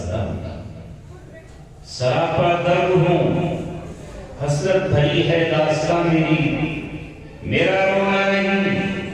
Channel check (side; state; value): both; identical; correlation 1.00